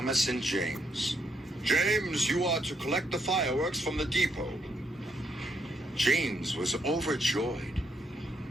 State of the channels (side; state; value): both; normal; correlation 0.76